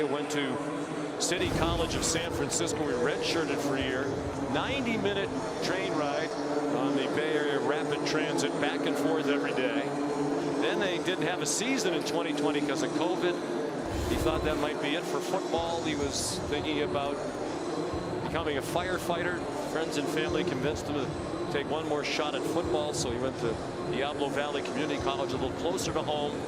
Went to City College of San Francisco. We redshirted for a year. 90-minute train ride on the Bay Area Rapid Transit, back and forth every day. Then they didn't have a season in 2020 because of COVID. He thought that might be it for football. He was thinking about becoming a firefighter. Friends and family convinced him to take one more shot at football, so he went to Diablo Valley Community College, a little closer to home.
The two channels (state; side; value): identical; both; correlation 1.00